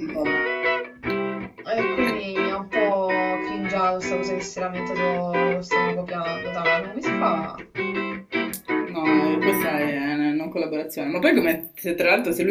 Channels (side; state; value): both; identical; correlation 1.00